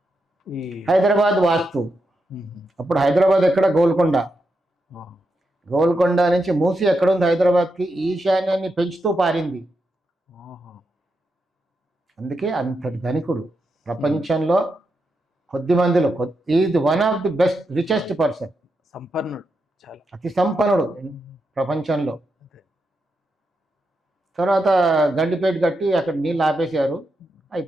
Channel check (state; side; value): normal; both; correlation 0.85